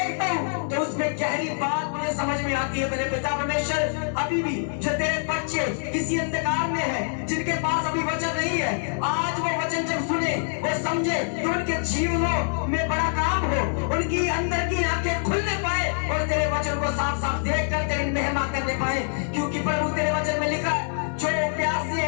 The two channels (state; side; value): silent; right; 58 dB below the other